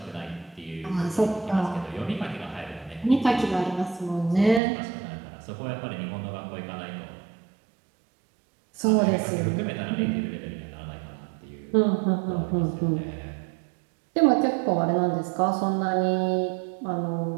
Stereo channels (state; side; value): drops out; left; at 4.6 s